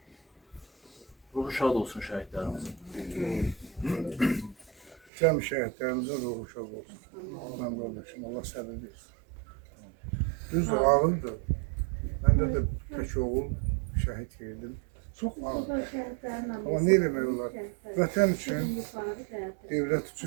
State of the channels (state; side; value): drops out; left; at 5.0 s